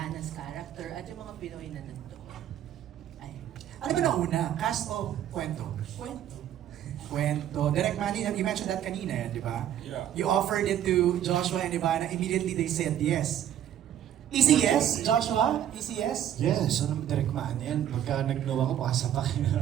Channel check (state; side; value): quieter; left; 11.0 dB